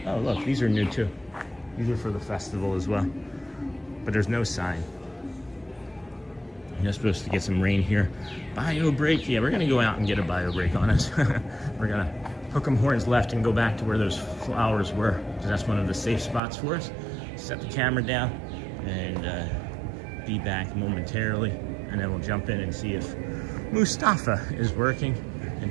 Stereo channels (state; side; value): drops out; left; at 16.4 s